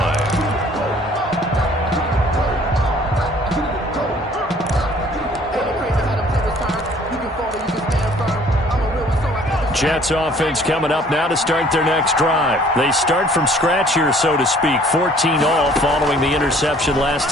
Jets offense coming up now to start their next drive. They start from scratch here, so to speak. 14-all following the interception last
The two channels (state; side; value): normal; both; correlation 0.56